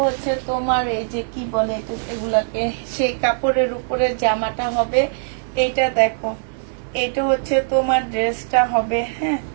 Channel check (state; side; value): silent; left; 65 dB below the other